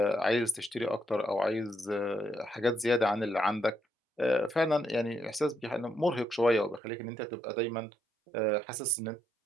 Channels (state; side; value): drops out; left; at 6.8 s